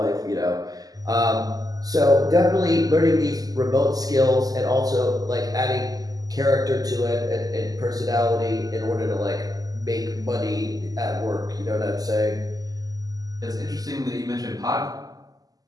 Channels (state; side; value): late; left; 0.17 ms